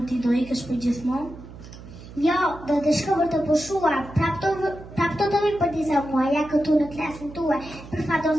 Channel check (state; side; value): noise; right; hum, 16 dB below the sound